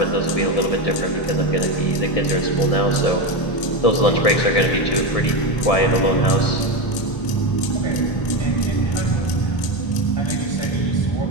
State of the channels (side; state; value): right; late; 1.7 ms